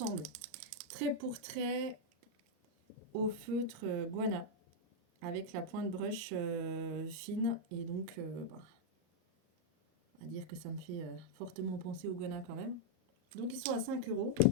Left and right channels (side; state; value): left; late; 33 ms